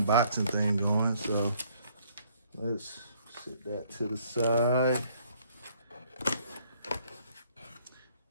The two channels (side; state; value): both; inverted; correlation -0.64